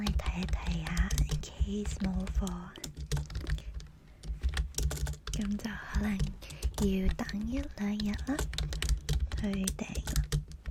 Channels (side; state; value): both; identical; correlation 1.00